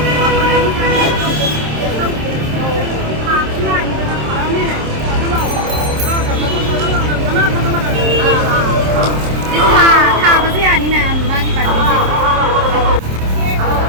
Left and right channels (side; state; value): left; late; 27 ms